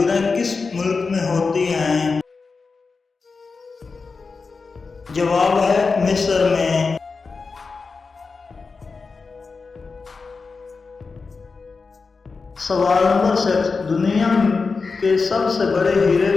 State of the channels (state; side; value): quieter; right; 4.5 dB